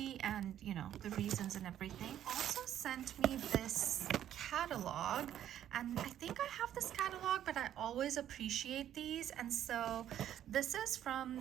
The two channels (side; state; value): left; quieter; 11.0 dB